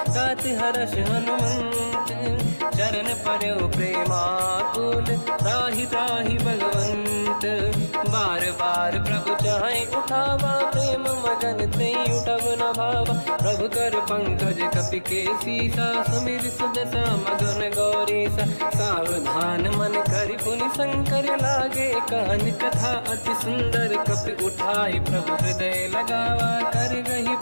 गात हर्ष हनुमंत चरण पर्यो प्रेमाकुल त्राहि त्राहि भगवंत बार बार प्रभु चाहे उठावा प्रेम मगन ते उठब न भावा प्रभु कर पंकज कपि के सीसा सुमिर सुदशा मगन गौरीसा सावधान मन करि पुनि शंकर लागे कहन कथा अति सुंदर कपि उठाई प्रभु हृदय लगावा कर गही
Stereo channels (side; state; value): both; inverted; correlation -1.00